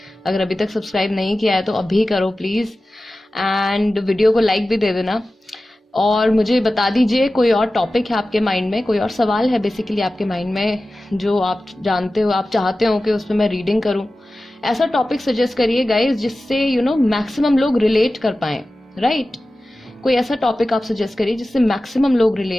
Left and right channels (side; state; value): both; normal; correlation 0.95